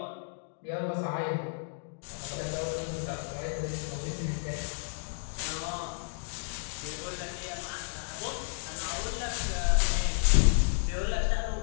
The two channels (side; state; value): right; silent; digital silence